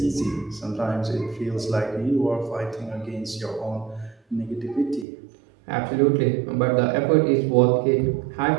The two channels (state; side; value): drops out; left; at 5.1 s